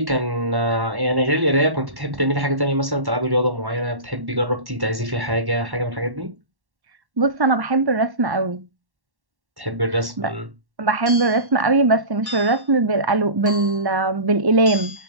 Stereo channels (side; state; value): left; late; 1.1 ms